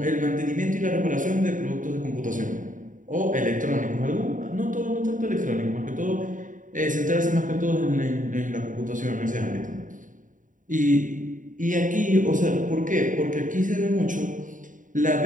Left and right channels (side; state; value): left; late; 0.38 ms